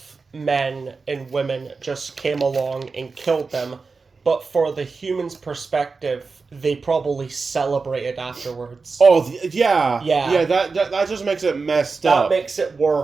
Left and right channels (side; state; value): left; quieter; 4.4 dB